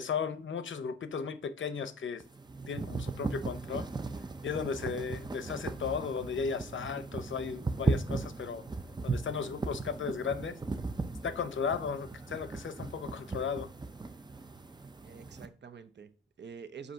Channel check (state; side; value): normal; both; correlation 0.47